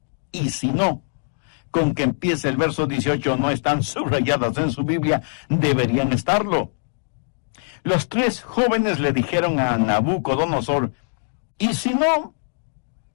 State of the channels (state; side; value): silent; right; digital silence